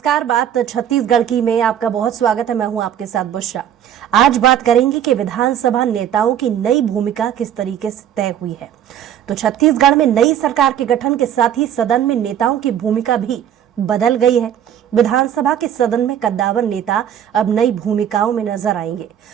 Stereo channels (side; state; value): left; quieter; 10.0 dB